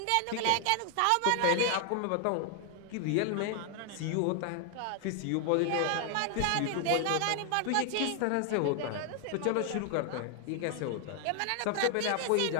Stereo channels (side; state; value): both; different; correlation 0.00